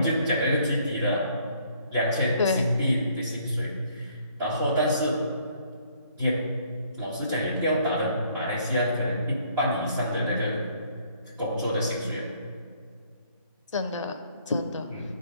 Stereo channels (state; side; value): inverted; both; correlation -0.64